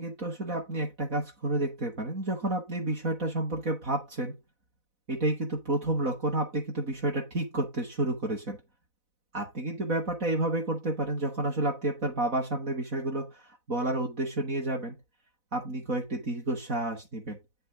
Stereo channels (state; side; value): late; left; 4.0 ms